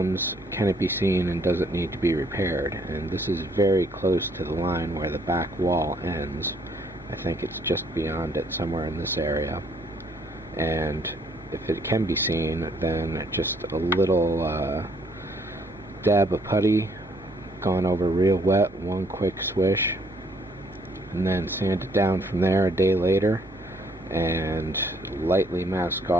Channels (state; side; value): noise; right; hum, 24 dB below the sound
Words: can it be seen and does it need to be repaired? And this is very close to the line where the back wall ends. I think it's just beyond it, somewhere in this area. And if it can be seen, then just a little dab of putty, gone over real wet, one quick swish, and then sand it down from there a day later, and lightly mask